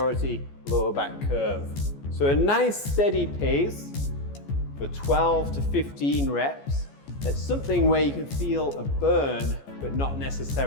lower back curve. So a nice steady pace for 12 to 15 reps. That's something where you can feel a burn, but not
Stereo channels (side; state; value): right; late; 14 ms